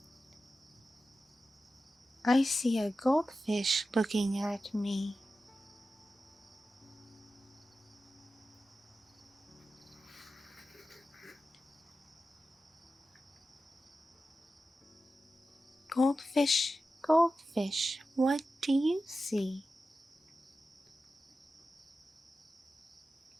I see a goldfish looking at me. Goldfish, what do you see?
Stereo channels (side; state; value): both; normal; correlation 0.93